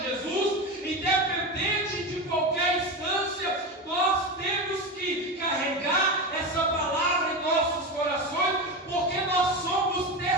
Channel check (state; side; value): normal; both; correlation 0.20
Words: Jesus, independente de qualquer instância, nós temos que carregar essa palavra em nossos corações, porque nós somos